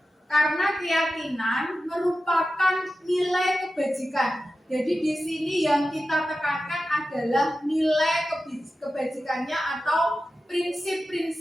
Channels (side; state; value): both; normal; correlation 0.93